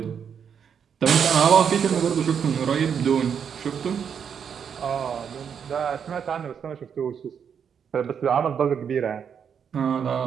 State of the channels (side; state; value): left; quieter; 7.4 dB